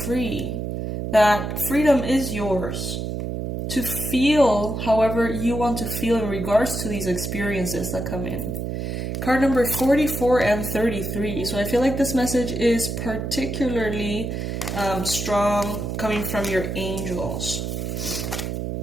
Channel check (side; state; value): right; noise; hum, 4 dB below the sound